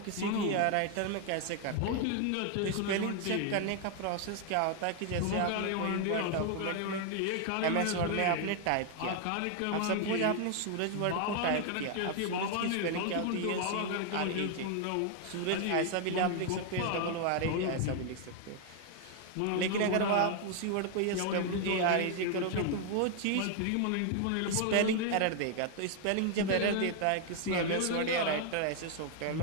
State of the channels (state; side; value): different; both; correlation 0.00